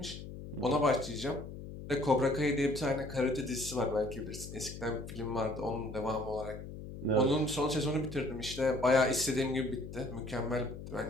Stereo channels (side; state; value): left; noise; hum, 11 dB below the sound